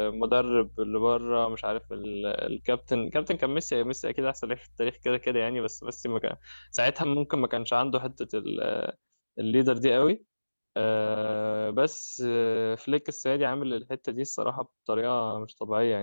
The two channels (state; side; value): inverted; both; correlation -1.00